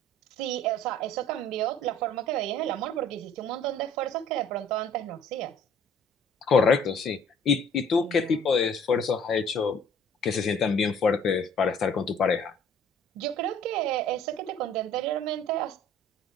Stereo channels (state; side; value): normal; both; correlation 0.53